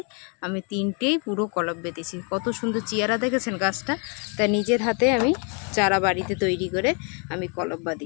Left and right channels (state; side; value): quieter; right; 36.2 dB